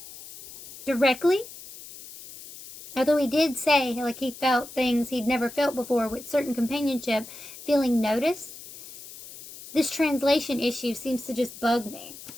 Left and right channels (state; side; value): noise; left; hiss, 15 dB below the sound